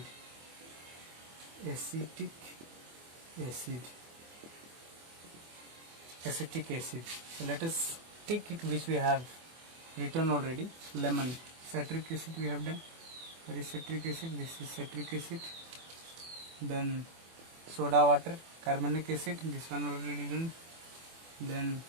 Acetic acid. So let us take it which we have written already. Lemon, citric acid we have done. There is citric acid, this is citric acid. Then soda water, carbonic acid, this one already done. Then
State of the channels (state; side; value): late; left; 24 ms